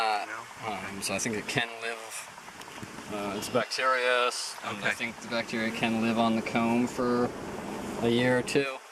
No? So I think it can live. It's bacterious, and I think the bacteria can live on the comb for a year or two.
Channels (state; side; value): identical; both; correlation 1.00